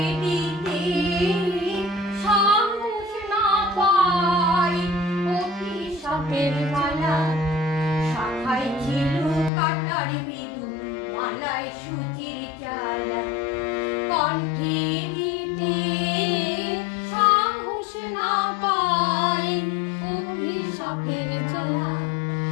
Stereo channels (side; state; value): right; drops out; at 9.5 s